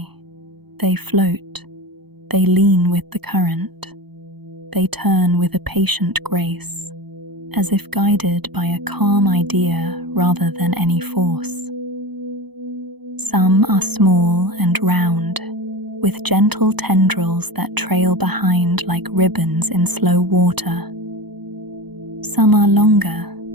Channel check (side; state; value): left; late; 0.98 ms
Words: They float, they lean with the current, they turn with a patient grace, as if guided by a calm idea rather than any force. Some are small and round, with gentle tendrils that trail behind like ribbons in slow water. Some are longer,